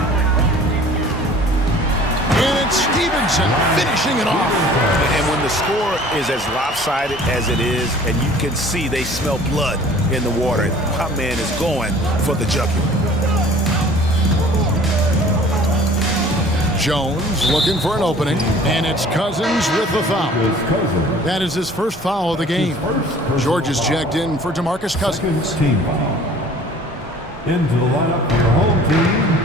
And it's Stevenson finishing it off. And when the score is as lopsided as it is, and you can see they smell blood in the water, my man is going for the jugular. Jones looking for an opening, and it's Cousins with the foul. That is his first foul of the game. George is checked in for DeMarcus Cousins. Team foul. Into the lineup for your home team.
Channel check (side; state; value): both; normal; correlation 0.49